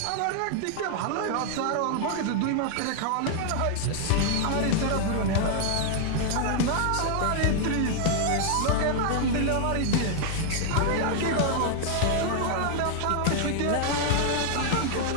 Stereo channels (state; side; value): different; both; correlation 0.00